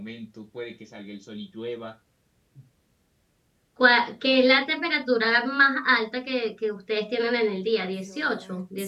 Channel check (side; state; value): both; identical; correlation 1.00